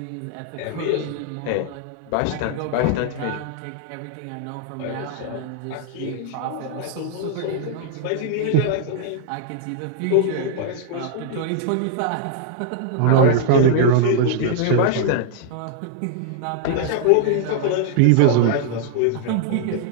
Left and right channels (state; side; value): different; both; correlation 0.00